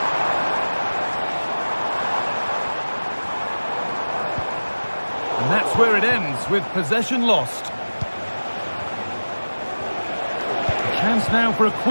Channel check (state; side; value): inverted; both; correlation -1.00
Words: And that's where it ends, with possession lost. Chance now for a